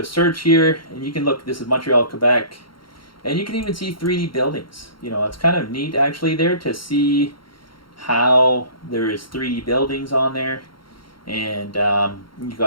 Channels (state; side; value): late; right; 0.73 ms